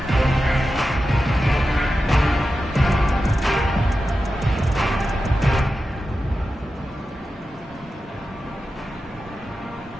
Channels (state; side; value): normal; both; correlation 0.92